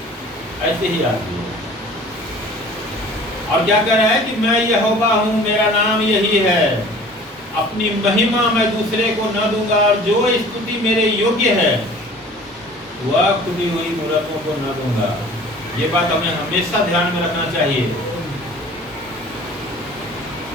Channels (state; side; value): normal; both; correlation 0.47